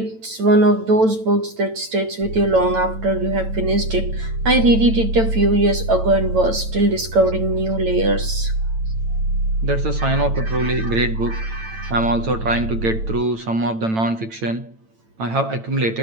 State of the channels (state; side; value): late; left; 9.0 ms